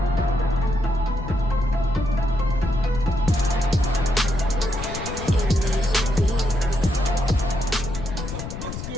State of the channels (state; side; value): noise; left; rumble, 7 dB below the sound